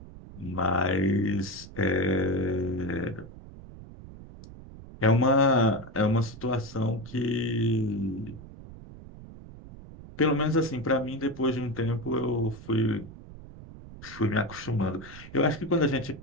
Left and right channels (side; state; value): right; noise; rumble, 16 dB below the sound